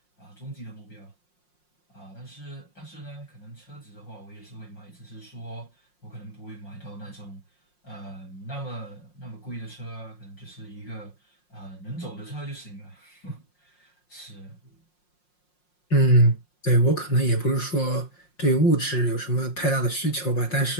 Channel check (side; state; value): right; late; 5.6 ms